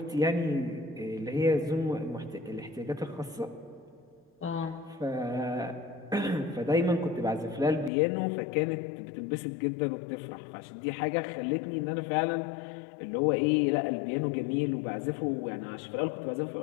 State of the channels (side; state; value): right; drops out; at 7.9 s